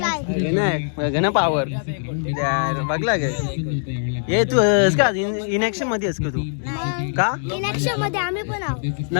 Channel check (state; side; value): silent; right; digital silence